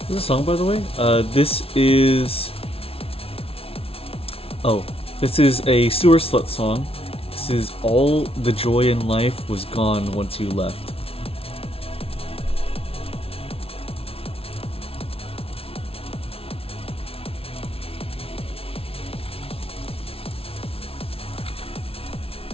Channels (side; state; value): right; late; 0.27 ms